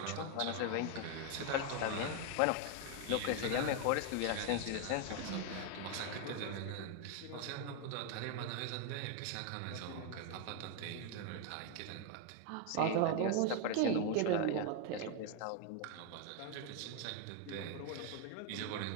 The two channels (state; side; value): different; both; correlation 0.01